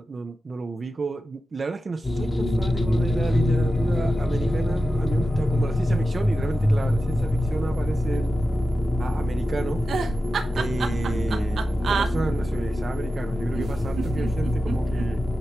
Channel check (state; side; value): normal; both; correlation 0.93